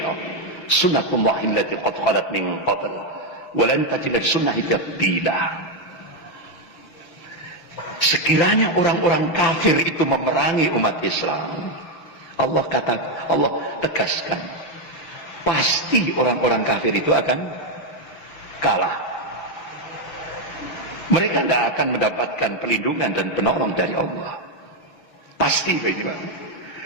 Sunnatullahi allati qad khalat min qabl, wa lan tajida sunnati tabdila. sekiranya orang-orang kafir itu memerangi umat Islam, Allah tegaskan, pasti orang-orang kafir itu akan kalah. Mereka tidak akan mendapatkan perlindungan dan penolong dari Allah. Pasti begini, Pak.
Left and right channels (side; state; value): right; late; 6.4 ms